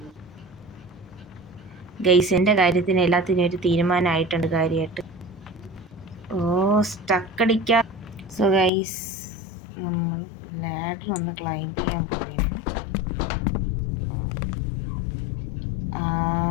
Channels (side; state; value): right; drops out; at 8.7 s